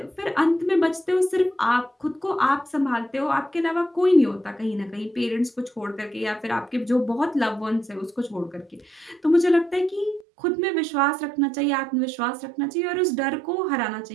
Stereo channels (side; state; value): left; drops out; at 10.2 s